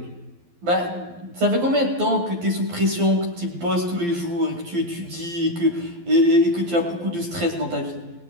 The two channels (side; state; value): left; late; 12 ms